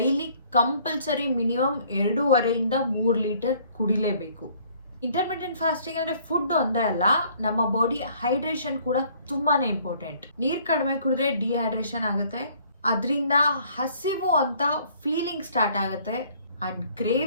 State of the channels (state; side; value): inverted; both; correlation -0.59